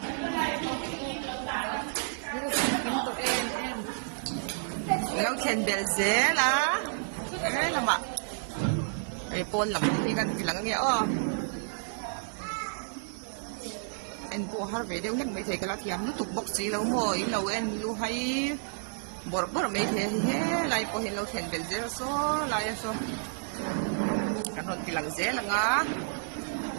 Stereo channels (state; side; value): silent; left; digital silence